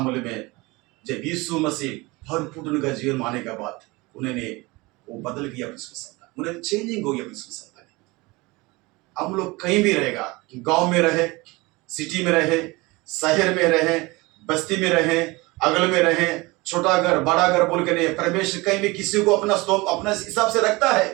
में जब यीशु मसीह भरपूर उनका जीवन माने के बाद उन्होंने वो बदल गया, उन्हें चेंजिंग हो गया। हम लोग कहीं भी रहेगा, गांव में रहे, सिटी में रहे, शहर में रहे, बस्ती में रहे, अगल में रहे, छोटा घर बड़ा घर बोल के नहीं, परमेश्वर कहीं भी किसी को अपना हिसाब से रखता है।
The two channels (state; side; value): quieter; left; 23.3 dB